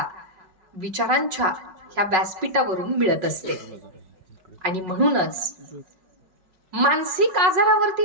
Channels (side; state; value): left; late; 5.4 ms